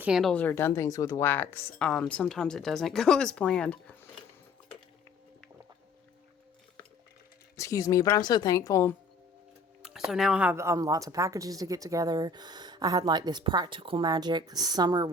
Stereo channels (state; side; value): quieter; right; 3.8 dB